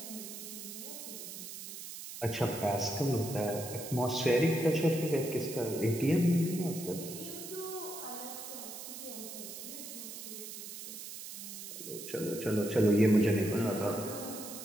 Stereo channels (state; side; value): noise; right; hiss, 10 dB below the sound